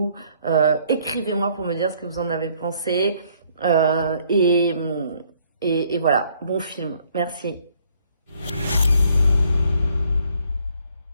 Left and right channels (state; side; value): inverted; both; correlation -0.64